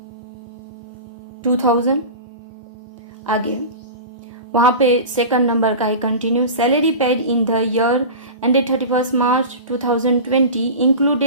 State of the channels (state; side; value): inverted; both; correlation -0.30